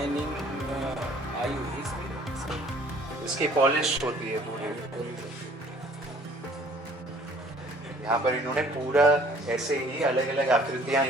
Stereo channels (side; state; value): both; normal; correlation 0.55